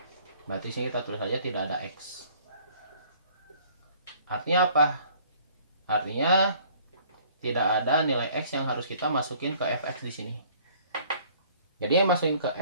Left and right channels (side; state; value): both; inverted; correlation -0.56